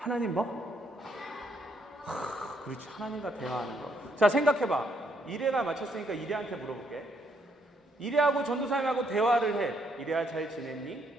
뭐? 그렇지, 하나님과 대화하는 거. 자, 생각해봐. 이래가 맞췄으니까 이래한테 물어볼게. 이래하고 전도사님하고 대화를 해. 이래야 잘 지냈니?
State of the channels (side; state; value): both; normal; correlation 0.72